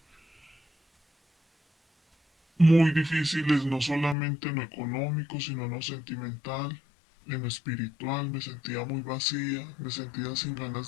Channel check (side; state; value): right; drops out; at 4.2 s